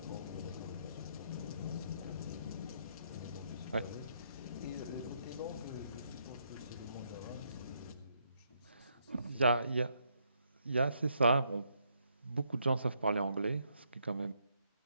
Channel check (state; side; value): inverted; both; correlation -0.75